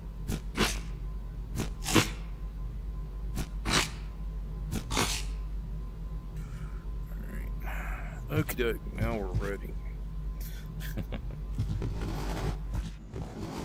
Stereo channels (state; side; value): identical; both; correlation 1.00